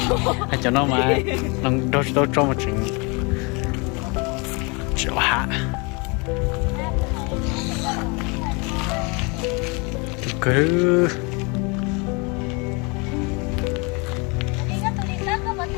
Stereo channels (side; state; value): right; quieter; 30.0 dB